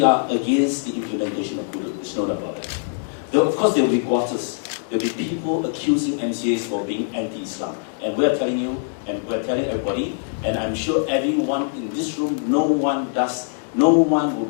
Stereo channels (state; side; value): silent; right; digital silence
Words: are against the implementation of hudud. There's no doubt about that. Of course, there will be quarters there'll be people accusing MCAs for being anti-Islam. And we're telling you, and we're telling everybody, and I'm sure everyone in this room, no one will